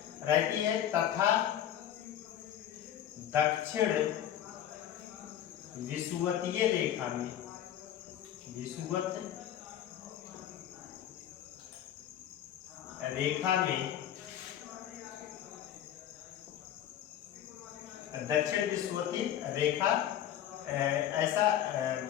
रहती है तथा दक्षिण विषुवतीय रेखा में, विषुवत रेखा में दक्षिण विषुवतीय रेखा ऐसा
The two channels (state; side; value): quieter; right; 10.9 dB